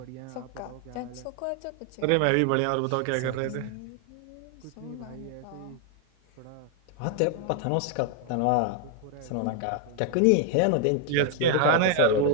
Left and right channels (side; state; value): both; different; correlation 0.00